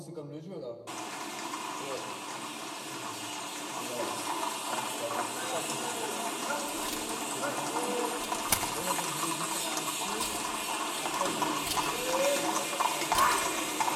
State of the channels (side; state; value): both; identical; correlation 1.00